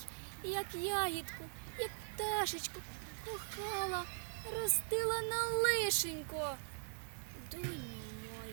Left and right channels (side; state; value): left; silent; digital silence